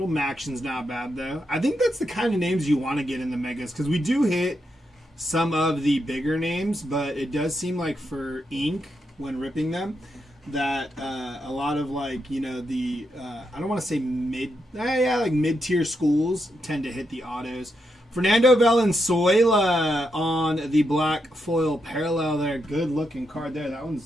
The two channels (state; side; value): normal; both; correlation 0.83